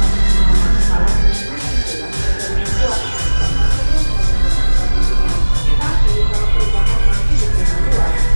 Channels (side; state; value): both; inverted; correlation -1.00